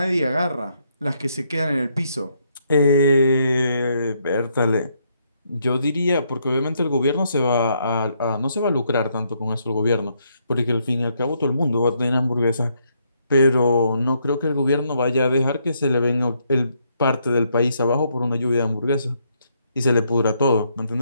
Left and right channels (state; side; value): inverted; both; correlation -0.74